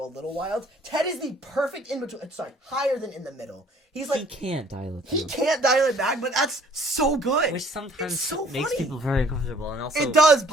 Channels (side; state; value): both; normal; correlation 0.57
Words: a little wild. Ted is the perfect in between. Sorry, higher than in the middle. He's like He can't dial it. he down. can't dial it back, but that's so good. Which sometimes It's so makes funny. people very uncomfortable, and also It does,